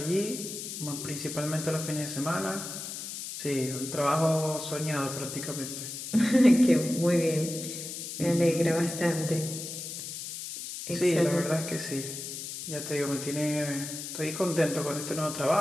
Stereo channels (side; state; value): left; noise; hiss, 8 dB below the sound